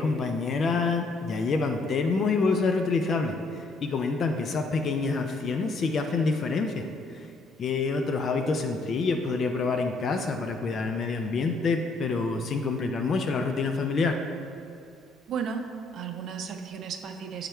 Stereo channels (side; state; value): right; quieter; 3.3 dB